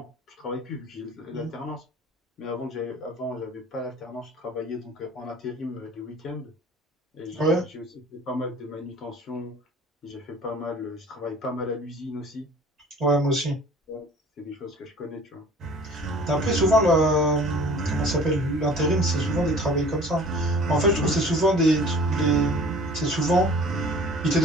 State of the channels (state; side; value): normal; both; correlation 0.47